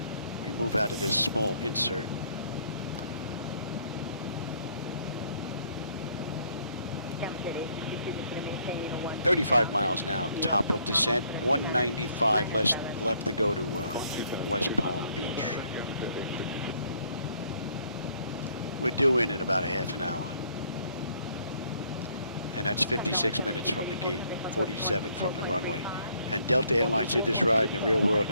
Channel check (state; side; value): inverted; both; correlation -0.65